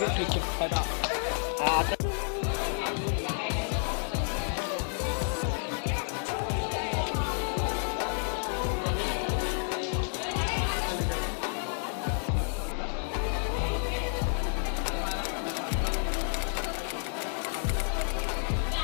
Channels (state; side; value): silent; right; 56 dB below the other